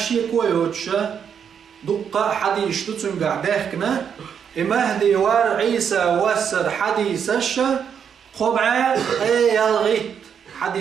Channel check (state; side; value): quieter; left; 7.6 dB